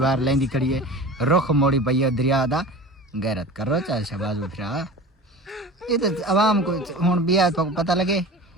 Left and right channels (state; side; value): normal; both; correlation 0.35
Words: لیندی کھڑی ہے رخ موڑی پئی ہے دریا دا غیرت کرو چاہے شہباز اٹھرا یہ تو عوام کو ہن بیا تو پتہ لگے